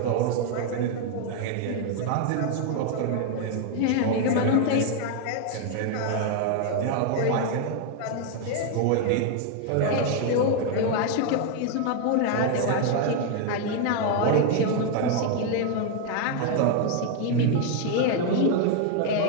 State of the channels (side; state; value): both; different; correlation 0.01